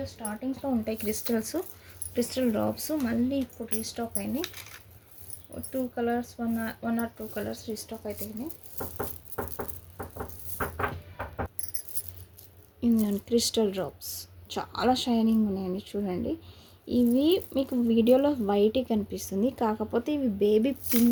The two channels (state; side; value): identical; both; correlation 1.00